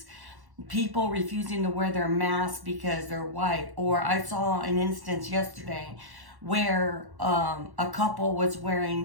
people refusing to wear their masks because they're white. Or I saw an instance yesterday where a couple was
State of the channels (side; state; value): left; late; 1.1 ms